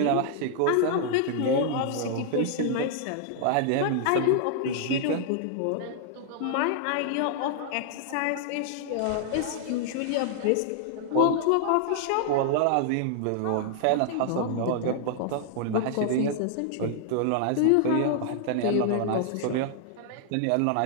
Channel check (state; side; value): different; both; correlation -0.01